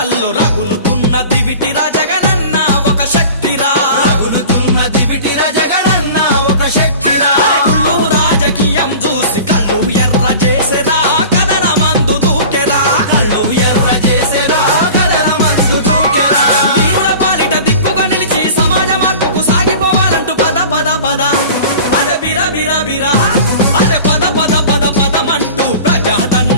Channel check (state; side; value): inverted; both; correlation -0.39